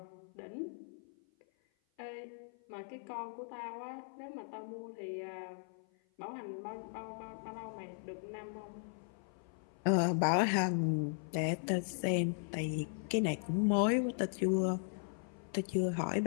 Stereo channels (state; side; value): silent; right; 52 dB below the other